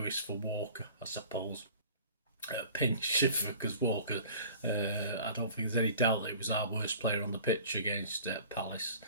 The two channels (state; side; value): inverted; both; correlation -0.45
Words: for Walker, I suppose. Pinch, because Walker, I don't think there's any doubt that he was our worst player on the pitch against Palace.